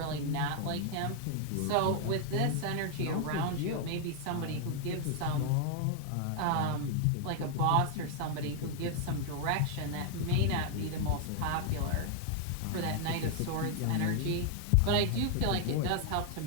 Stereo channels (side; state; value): both; different; correlation 0.00